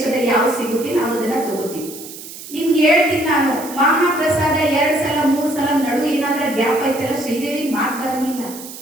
ಯಾವ ಸಿಗುತ್ತೆ ನಾವು ಅದನ್ನ ತಗೋತೀವಿ. ನಿಮ್ಗೆ ಹೇಳ್ತೀನಿ ನಾನು, ಮಹಾಪ್ರಸಾದ 2 ಸಲ 3 ಸಲ ನಡು ಏನಾದ್ರೂ ಗ್ಯಾಪ್ ಐತಲ್ಲ, ಶ್ರೀದೇವಿ ಮಾತು ಬರಂಗಿಲ್ಲ.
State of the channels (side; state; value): right; noise; hiss, 13 dB below the sound